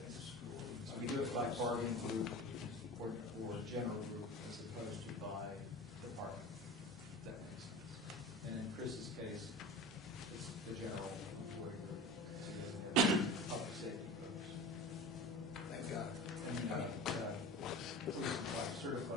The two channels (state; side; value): normal; both; correlation 0.34